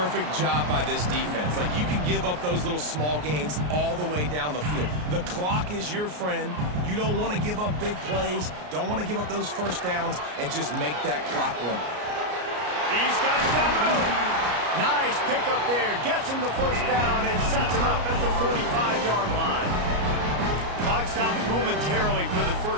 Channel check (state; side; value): late; left; 33 ms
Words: job by this defense. Like, you can give up those little small gains all the way down the field. The clock is your friend. You don't want to give up big plays. Don't want to give up those first downs and just make that clock run. He's got it down the middle. Nice pickup there. Gets him the first down and sets him up at the 45-yard line. Clock stops momentarily for the